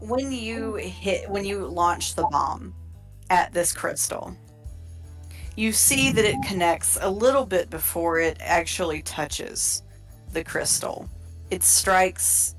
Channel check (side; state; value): both; identical; correlation 1.00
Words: when you launch the bomb at this crystal, you see that it connects a little bit before it actually touches the crystal. It strikes